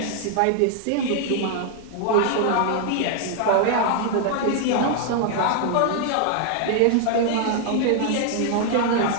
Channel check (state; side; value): different; both; correlation 0.00